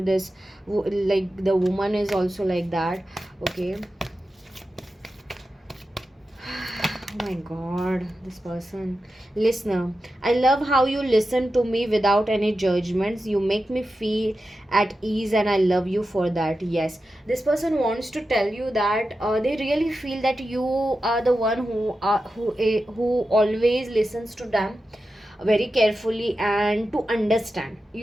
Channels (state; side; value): normal; both; correlation 0.91